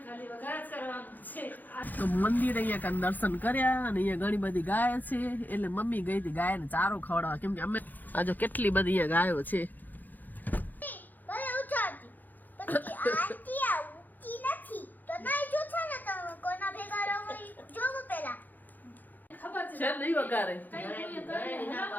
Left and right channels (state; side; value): late; right; 0.085 ms